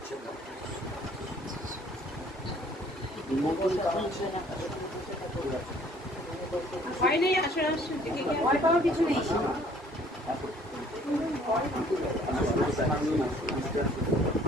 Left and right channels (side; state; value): both; normal; correlation 0.57